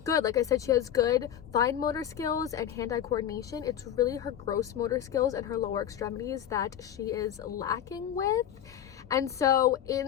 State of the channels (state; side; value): quieter; right; 10.1 dB